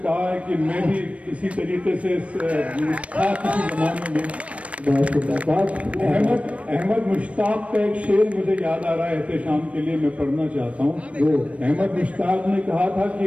है कि मैं भी इसी तरीके से किसी जमाने में। अहमद मुश्ताक का एक शेर मुझे याद आ रहा है, एहतशाम के लिए मैं पढ़ना चाहता हूँ। अहमद मुश्ताक ने कहा था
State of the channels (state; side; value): late; left; 0.064 ms